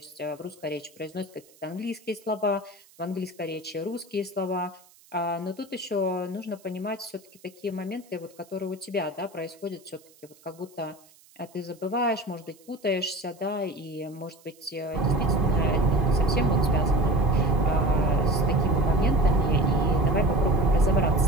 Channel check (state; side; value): noise; right; hiss, 27 dB below the sound